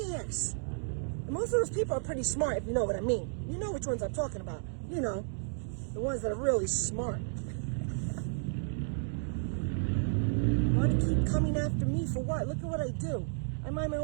And most of those people are pretty smart, if you know what I mean. You know which ones I'm talking about. You know, the ones that are really smart. Want to keep coming after me for what? Look at what I do. I mind my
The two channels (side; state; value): left; silent; digital silence